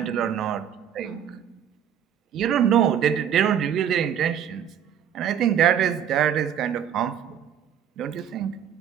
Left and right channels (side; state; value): left; quieter; 9.2 dB